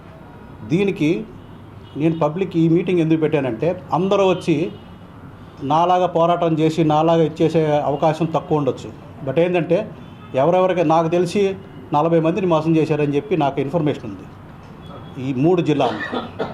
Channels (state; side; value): identical; both; correlation 1.00